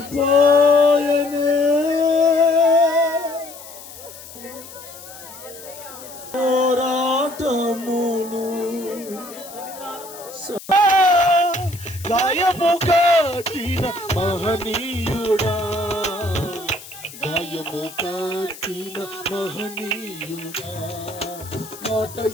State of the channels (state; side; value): noise; left; hiss, 16 dB below the sound